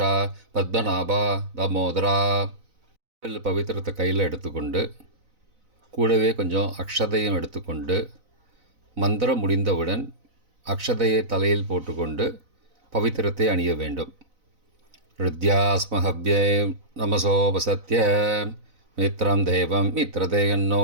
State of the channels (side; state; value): left; late; 4.0 ms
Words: பத்மநாபா, தாமோதரா. பவித்திரத்தை கையில் எடுத்துக்கொண்டு கூடவே கொஞ்சம் அக்ஷதையும் எடுத்துக்கொண்டு மந்திரம் முடிந்தவுடன் அக்ஷதையை தலையில் போட்டுக்கொண்டு பவித்திரத்தை அணிய வேண்டும். ருத்யாஸ்மஹவ்யே நமசோபசத்ய மித்ரம் தேவம்